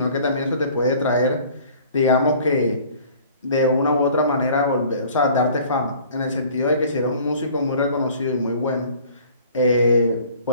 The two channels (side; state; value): both; inverted; correlation -0.51